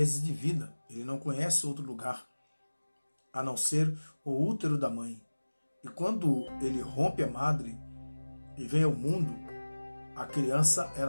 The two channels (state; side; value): inverted; both; correlation -1.00